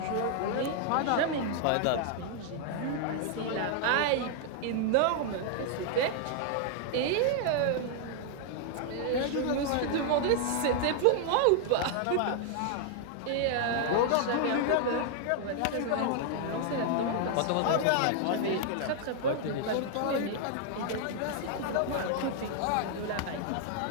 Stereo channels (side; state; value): both; different; correlation 0.00